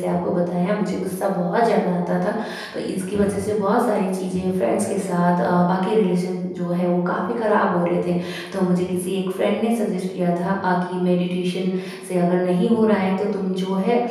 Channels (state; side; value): identical; both; correlation 1.00